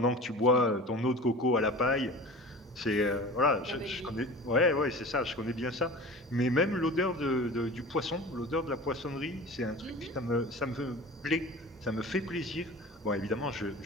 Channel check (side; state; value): both; normal; correlation 0.37